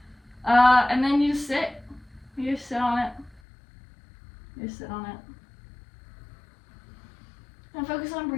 And then you just sit. You just sit on it. You just sit on it. And focus on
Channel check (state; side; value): drops out; right; at 3.4 s